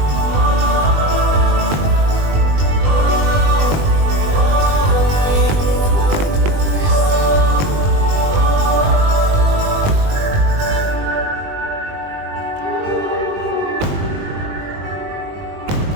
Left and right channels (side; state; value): left; late; 20 ms